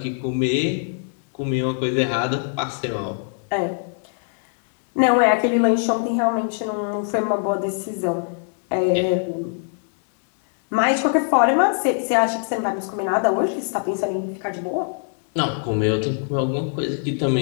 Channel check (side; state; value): right; silent; 62 dB below the other